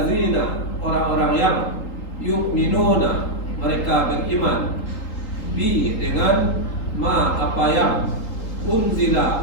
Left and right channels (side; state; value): right; late; 3.8 ms